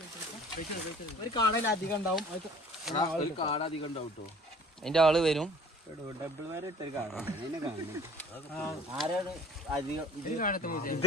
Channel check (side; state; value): both; normal; correlation 0.51